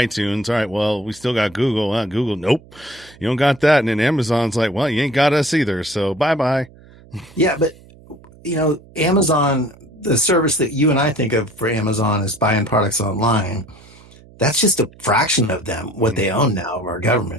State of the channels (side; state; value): right; noise; hum, 24 dB below the sound